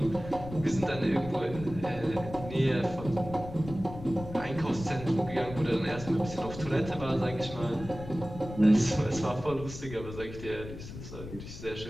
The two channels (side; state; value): left; noise; rumble, 12 dB below the sound